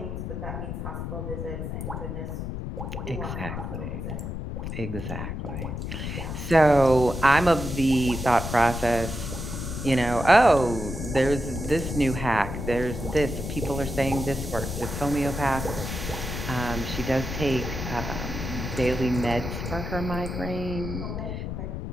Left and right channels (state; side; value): noise; left; rumble, 5 dB below the sound